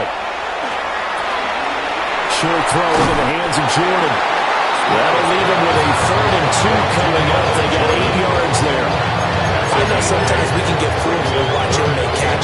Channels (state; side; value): identical; both; correlation 1.00